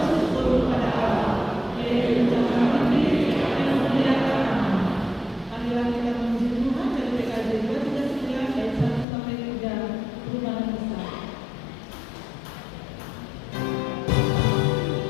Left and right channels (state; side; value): drops out; right; at 9.1 s